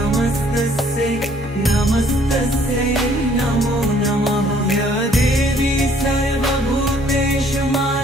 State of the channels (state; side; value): normal; both; correlation 0.61